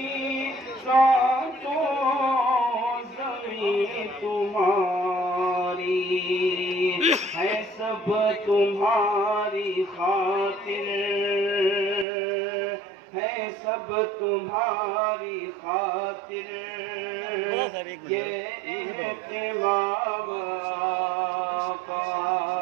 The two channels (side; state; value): left; drops out; at 12.1 s